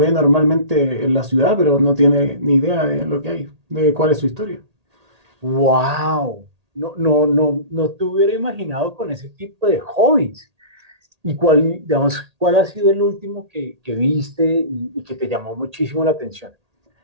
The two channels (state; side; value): late; left; 1.8 ms